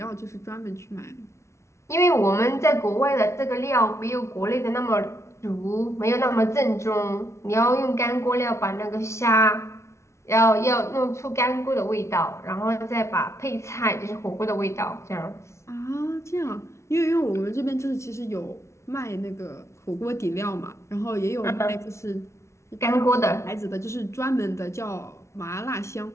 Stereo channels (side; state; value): right; late; 0.13 ms